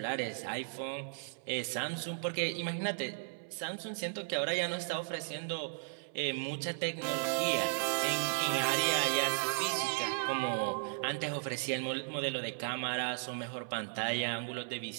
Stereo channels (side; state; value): left; silent; 54 dB below the other